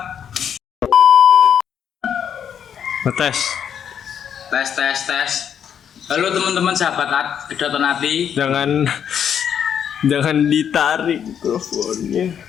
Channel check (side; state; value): right; quieter; 8.4 dB